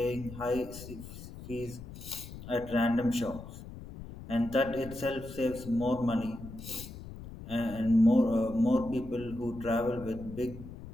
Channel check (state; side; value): noise; left; rumble, 13 dB below the sound